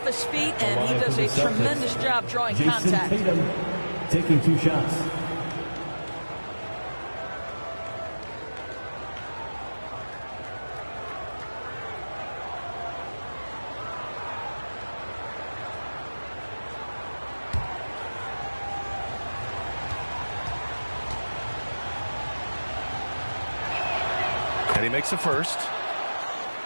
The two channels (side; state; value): both; inverted; correlation -1.00